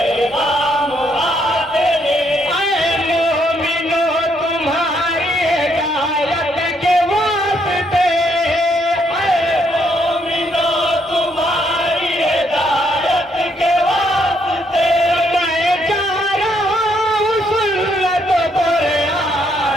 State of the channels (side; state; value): both; normal; correlation 0.73